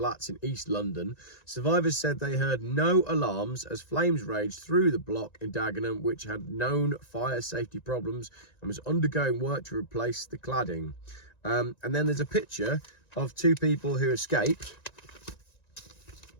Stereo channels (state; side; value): late; right; 1.9 ms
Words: in East London. Survivors said they heard no alarms as flames raged through the block in Dagenham, which had known fire safety problems and was undergoing work to replace the cladding. And then there's a picture of two people who escaped.